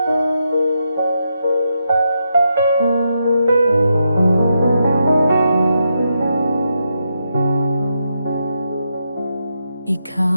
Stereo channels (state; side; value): inverted; both; correlation -0.83